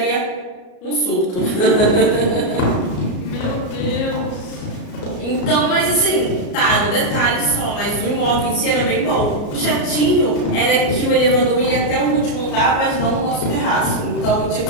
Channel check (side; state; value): right; late; 33 ms